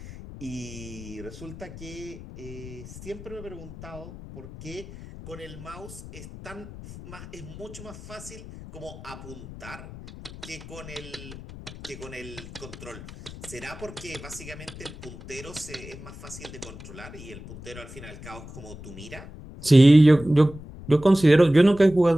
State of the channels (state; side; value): noise; left; rumble, 14 dB below the sound